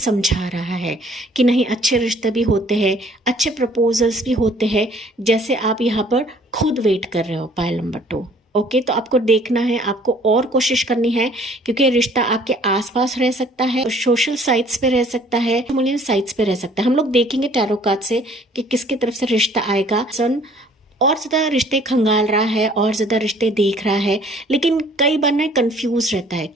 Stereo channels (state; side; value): normal; both; correlation 0.56